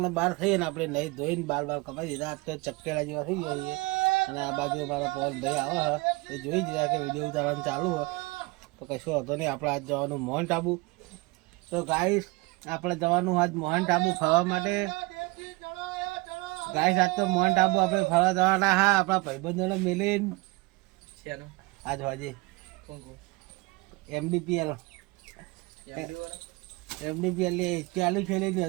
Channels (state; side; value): quieter; left; 25.0 dB